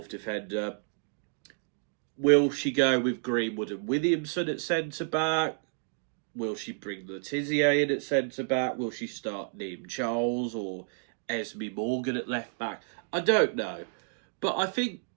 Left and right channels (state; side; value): silent; left; digital silence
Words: defender. Will she go with Greenwood and Williamson at centre back? Will she bring Letizia in at centre back? Will she start Neem Charles or Esme Morgan at left back? I don't know. But I think